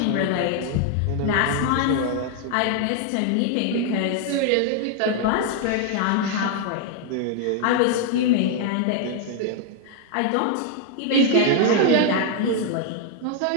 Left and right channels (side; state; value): both; different; correlation 0.00